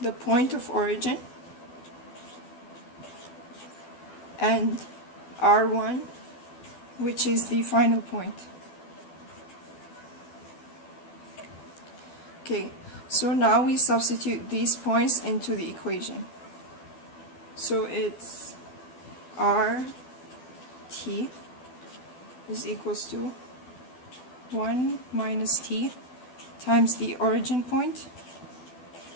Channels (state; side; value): late; right; 12 ms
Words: the point of origin and R1, which is the final point. Okay, so now we substitute these points into the equation. So it's RT is equals to 1 minus t times the origin point